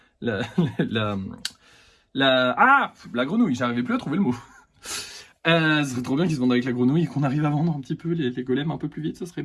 la, la grenouille. J'arrivais plus à trouver le mot. Ce serait trop bien qu'ils se vendent avec la grenouille et qu'on arrive à vendre un petit peu les golems un peu plus vite, ça serait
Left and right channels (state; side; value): identical; both; correlation 1.00